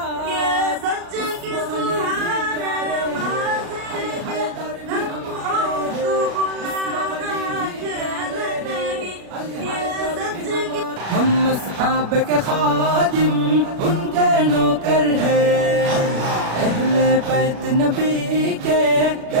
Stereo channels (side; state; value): left; late; 36 ms